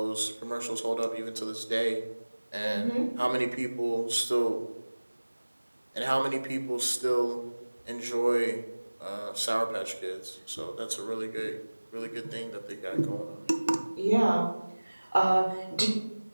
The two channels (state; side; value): inverted; both; correlation -1.00